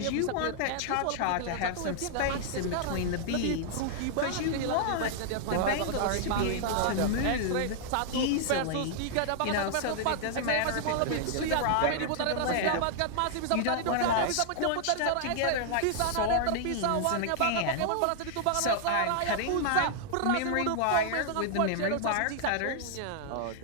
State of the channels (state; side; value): different; both; correlation -0.01